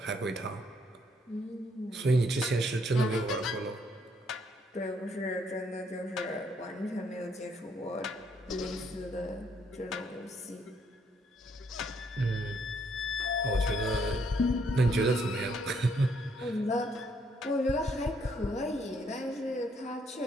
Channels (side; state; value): both; normal; correlation 0.70